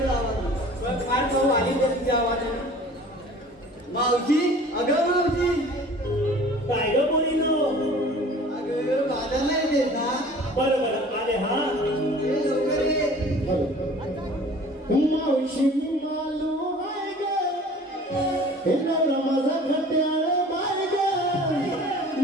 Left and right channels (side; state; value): both; normal; correlation 0.46